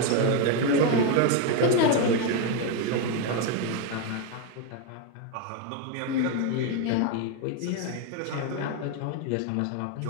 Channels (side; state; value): both; different; correlation 0.02